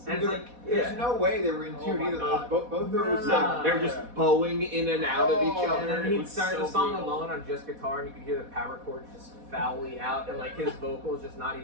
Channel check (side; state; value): left; late; 4.1 ms